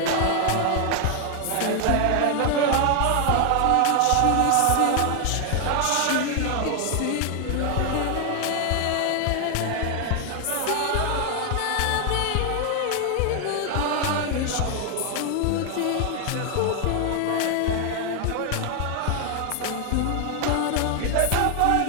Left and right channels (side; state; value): both; different; correlation 0.00